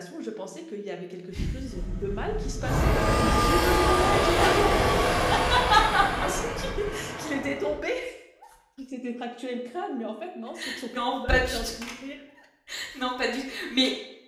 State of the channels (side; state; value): both; identical; correlation 1.00